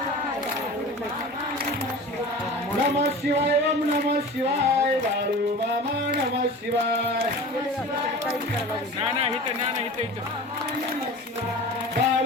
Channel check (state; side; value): normal; both; correlation 0.36